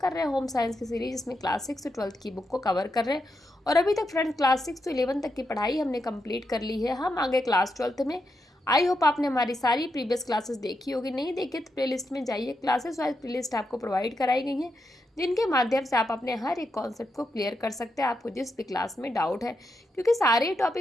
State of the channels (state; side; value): normal; both; correlation 0.84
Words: रहे हैं होम साइंस की सीरीज, जिसमें क्लास 6 से 12th की बुक को कवर कर रहे हैं। और अभी तक फ्रेंड्स क्लास 6 से 11 तक की पढ़ाई हमने कंप्लीट कर ली है। हम आगे क्लास 12th में। आई होप आपने हमारी सारी प्रीवियस क्लासेस देखी होगी। नहीं देखी तो प्लेलिस्ट में जाइए, क्लासेस वाइज प्लेलिस्ट आपको प्रोवाइड कराई गई है, जिनके माध्यम से आप अपने हर एक कॉन्सेप्ट को क्लियर कर सकते हैं, आपको जिस भी क्लास में डाउट है। क्योंकि सारे